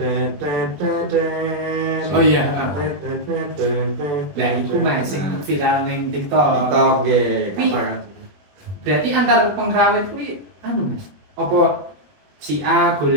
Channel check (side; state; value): left; late; 21 ms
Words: Oh iya. Nah itu mas sing viral ning TikTok. Nggih. Berarti antar pengrawit kuwi anu mas. Apa si A